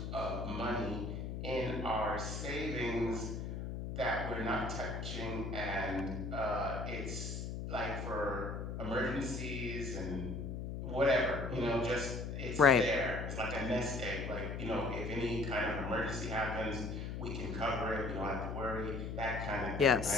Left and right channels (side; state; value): left; noise; hum, 5 dB below the sound